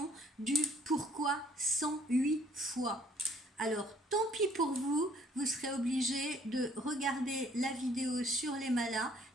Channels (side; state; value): both; normal; correlation 0.61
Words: du pourquoi 108 fois. Alors, tant pis pour vous, vous serez obligé de regarder la vidéo sur les malas